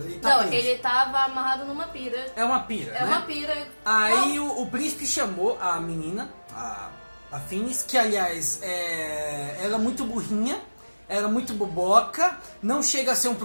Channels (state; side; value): inverted; both; correlation -1.00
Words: tá Não, preso. ele tava amarrado numa pira. É uma pira, É né? uma pira. Aí o príncipe chamou a menina, a Finis, que aliás ela é muito burrinha, ela é muito boboca, não chega a ser um